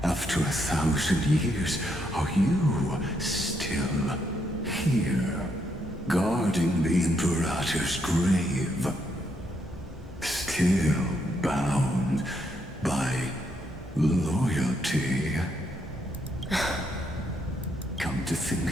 after 1,000 years, are you still here, guarding the Imperator's grave? Still bound by loyalty? Come to think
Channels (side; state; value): both; normal; correlation 0.76